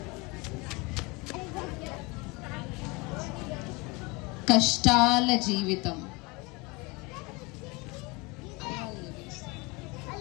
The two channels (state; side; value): quieter; right; 25.6 dB